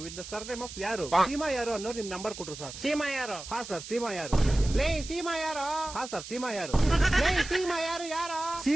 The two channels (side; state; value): right; noise; hiss, 12 dB below the sound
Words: ವಿತ್ ದ ಸರ್ನೇಮ್ ಆಫ್ ಯಾರು, ಸೀಮಾ ಯಾರು ಅನ್ನೋರು ನಿಮ್ ನಂಬರ್ ಕೊಟ್ರು ಸರ್. ಸೀಮಾ ಯಾರು? ಹಾ ಸರ್, ಸೀಮಾ ಯಾರು. ಲೇ ಸೀಮಾ ಯಾರು? ಹಾ ಸರ್, ಸೀಮಾ ಯಾರು. ಲೇ ಸೀಮಾ ಯಾರು?